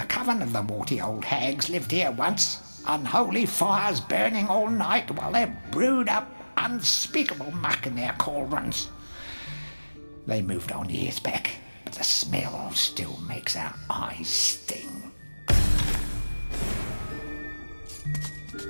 coven of the warty old hags lived here once, unholy fires burning all night while they brewed up unspeakable muck in their cauldrons. They moved on years back, but the smell still makes our eyes sting.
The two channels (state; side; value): inverted; both; correlation -1.00